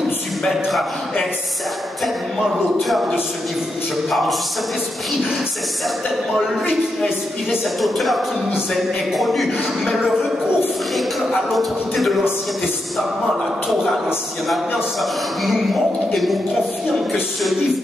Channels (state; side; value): normal; both; correlation 0.85